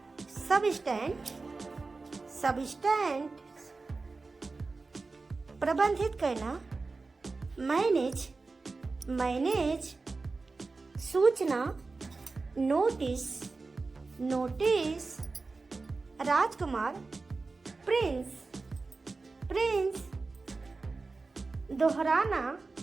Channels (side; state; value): left; quieter; 3.9 dB